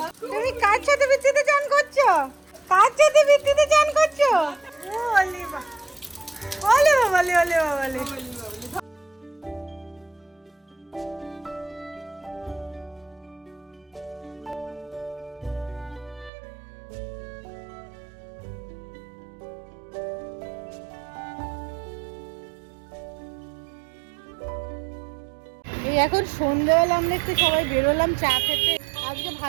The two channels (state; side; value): drops out; left; at 16.3 s